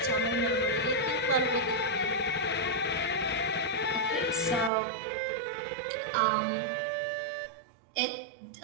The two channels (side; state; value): left; drops out; at 4.7 s